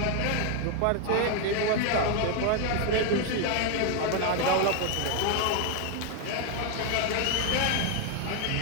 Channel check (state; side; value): different; both; correlation 0.01